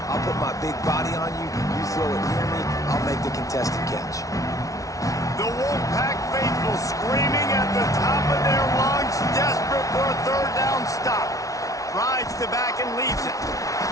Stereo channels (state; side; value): late; right; 0.17 ms